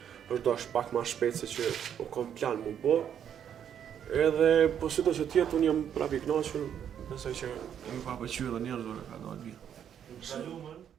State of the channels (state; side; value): quieter; left; 9.0 dB